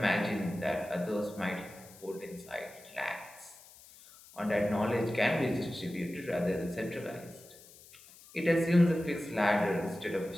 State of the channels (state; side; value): noise; left; hiss, 22 dB below the sound